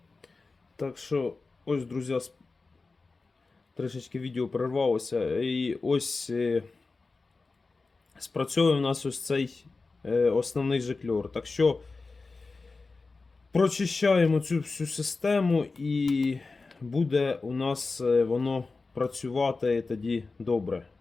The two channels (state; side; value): quieter; right; 3.9 dB